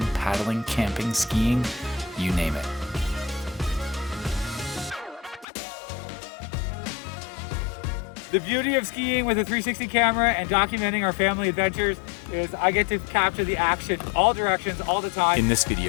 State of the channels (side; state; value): right; drops out; at 5.5 s